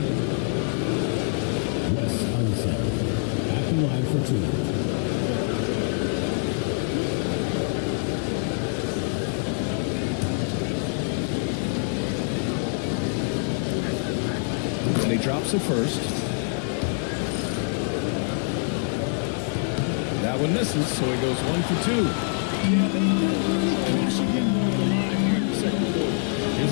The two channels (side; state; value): right; silent; 62 dB below the other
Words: Wes Unseld at the line for 2. And he drops it first. That one misses, so he goes 1 for 2. Yeah, they should get more of the line here in the second quarter. Here's